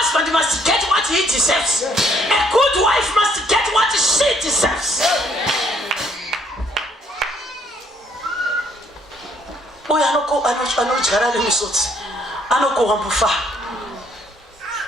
must get what he deserves. A good wife must get what she deserves. Uya anodyara nemisodzi anokohwa mufaro.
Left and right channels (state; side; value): normal; both; correlation 0.66